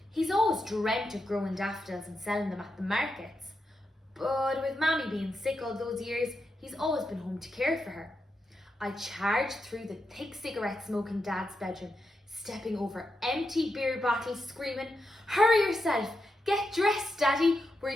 he's always dreamt of growing daffodils and selling them at the markets. But with Mammy being sick all those years, he's always been home to care for her. I charge through the thick cigarette smoke in Dad's bedroom, stepping over empty beer bottles, screaming, "Hurry yourself! Get dressed, Daddy! We're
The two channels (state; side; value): normal; both; correlation 0.86